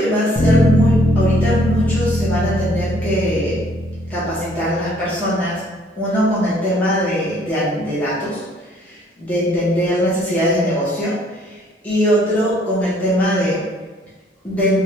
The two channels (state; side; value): normal; both; correlation 0.62